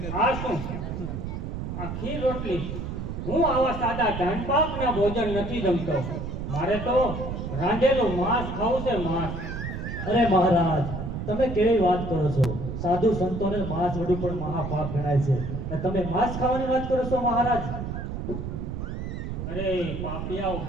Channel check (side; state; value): right; noise; rumble, 5 dB below the sound